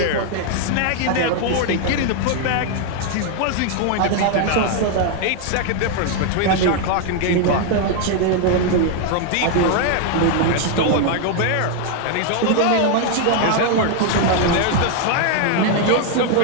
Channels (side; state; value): both; different; correlation 0.00